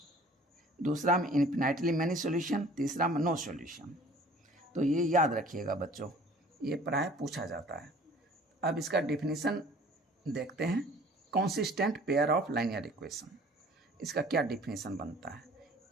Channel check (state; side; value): normal; both; correlation 0.50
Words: दूसरा में इन्फिनाइटली मैनी सॉल्यूशन, तीसरा में नो सॉल्यूशन। तो ये याद रखिएगा बच्चों, ये प्राय पूछा जाता है। अब इसका डेफिनेशन देखते हैं, consistent pair of linear equation. इसका क्या डेफिनेशन बनता है,